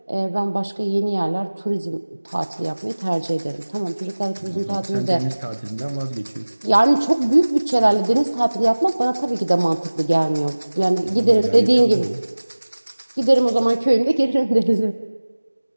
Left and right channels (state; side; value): inverted; both; correlation -1.00